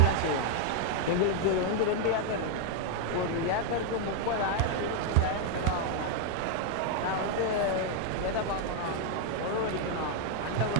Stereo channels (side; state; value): both; different; correlation 0.00